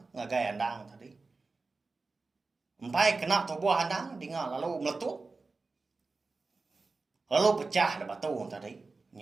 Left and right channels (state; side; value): quieter; left; 3.9 dB